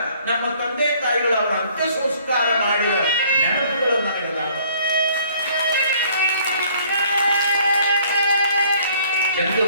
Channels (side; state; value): both; inverted; correlation -0.59